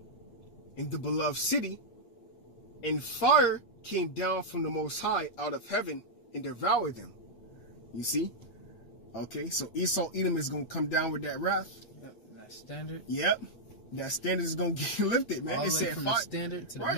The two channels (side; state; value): right; late; 8.6 ms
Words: in the beloved city, and fire came down from the Most High out of heaven and devoured them. You see? Okay, so Esau, Edom is going to come down with that wrath. Yep, that standard. Yep. That standard is going to get lifted, man. All It the way said from fire. the standard to the